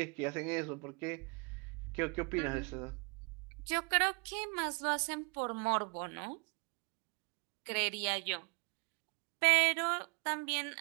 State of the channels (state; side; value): quieter; left; 34.3 dB